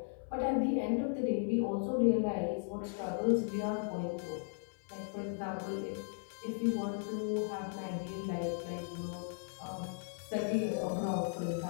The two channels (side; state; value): right; silent; 53 dB below the other